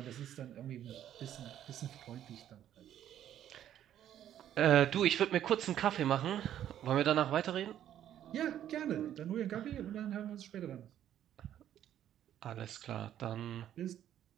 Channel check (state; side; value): quieter; left; 11.0 dB